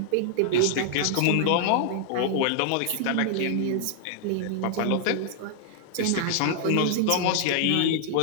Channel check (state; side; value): different; both; correlation -0.01